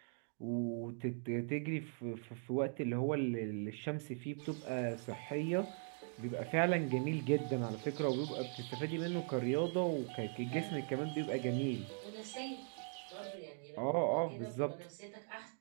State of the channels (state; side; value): silent; left; 51 dB below the other